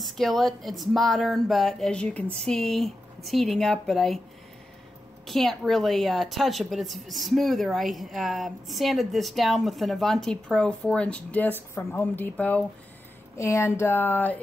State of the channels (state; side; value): normal; both; correlation 0.91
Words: It's modern, but as you can see, it's heating up, but I can't really touch it, but it's smoother. I sanded this down with an Avanti Pro 4-inch disc from Home Depot, and